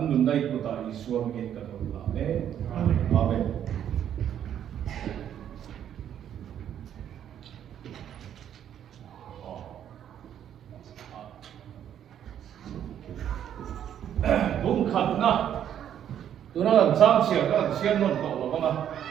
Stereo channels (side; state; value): left; quieter; 9.9 dB